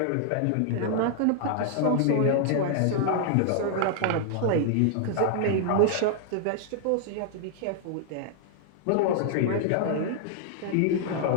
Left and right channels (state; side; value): different; both; correlation -0.01